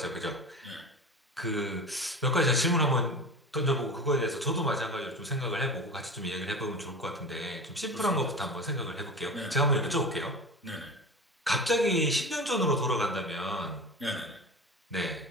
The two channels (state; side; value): normal; both; correlation 0.31